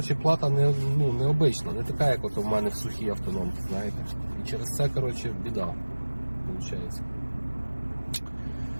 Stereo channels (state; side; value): inverted; both; correlation -1.00